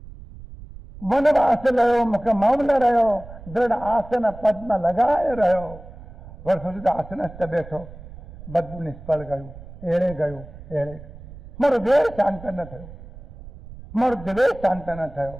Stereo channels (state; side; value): noise; right; rumble, 16 dB below the sound